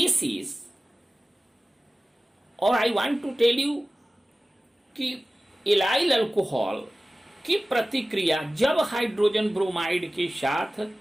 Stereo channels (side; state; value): both; normal; correlation 0.97